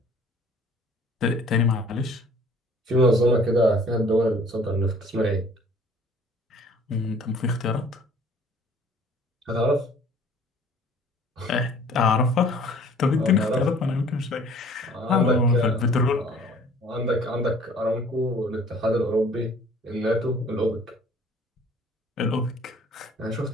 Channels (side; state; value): both; normal; correlation 0.53